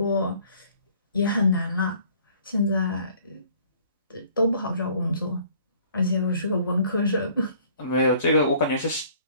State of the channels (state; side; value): inverted; both; correlation -0.57